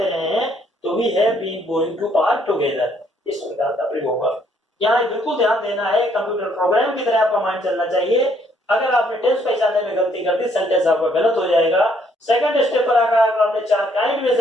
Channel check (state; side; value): normal; both; correlation 0.68